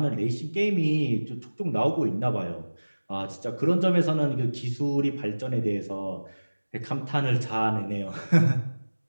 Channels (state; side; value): inverted; both; correlation -1.00